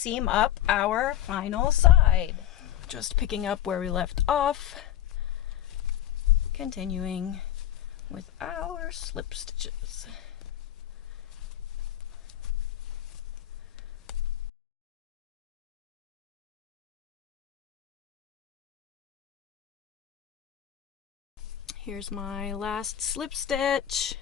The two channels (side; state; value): right; quieter; 11.7 dB